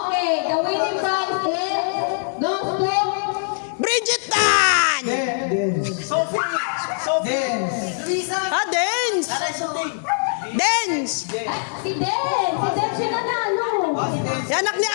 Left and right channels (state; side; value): silent; right; digital silence